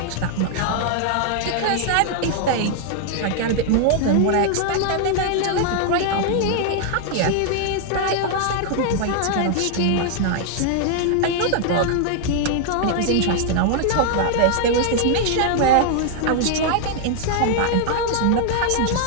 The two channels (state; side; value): different; both; correlation 0.00